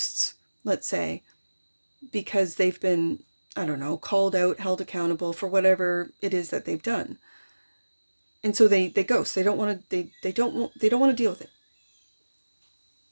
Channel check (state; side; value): inverted; both; correlation -1.00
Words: let's say, because they've been, called out, held accountable for whatever it is that they've done. And so they ghost. They don't want to deal with it.